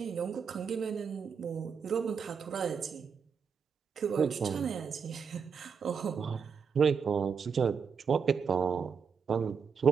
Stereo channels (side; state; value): left; quieter; 6.2 dB